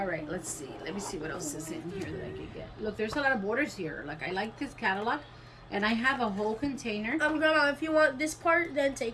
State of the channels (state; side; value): identical; both; correlation 1.00